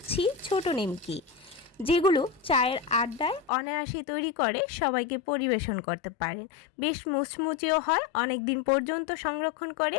ছোট নিমকি, যেগুলো চায়ের আড্ডায় অনায়াসে তৈরি করে সবাইকে পরিবেশন করতে পারেন। বেশ মুচমুচেও হয়, অনেক দিন পর্যন্ত সংরক্ষণ করে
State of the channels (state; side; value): drops out; right; at 3.5 s